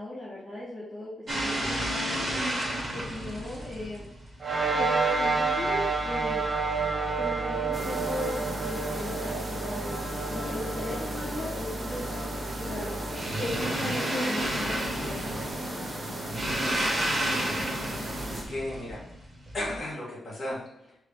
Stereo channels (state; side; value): normal; both; correlation 0.78